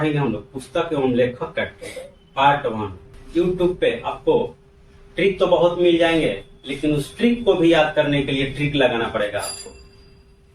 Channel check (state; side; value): identical; both; correlation 1.00